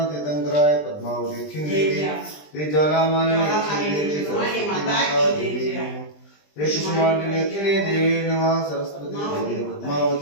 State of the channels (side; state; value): right; late; 20 ms